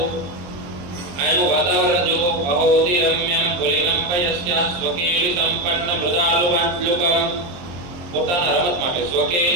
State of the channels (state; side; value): late; left; 22 ms